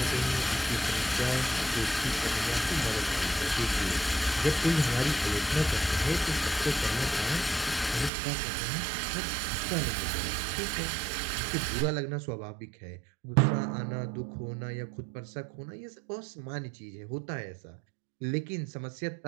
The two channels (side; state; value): left; drops out; at 8.1 s